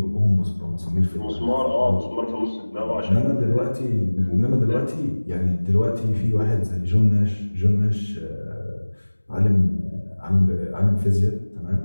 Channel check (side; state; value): both; inverted; correlation -1.00